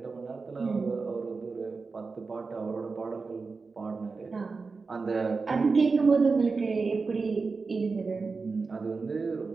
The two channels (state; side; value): quieter; left; 4.4 dB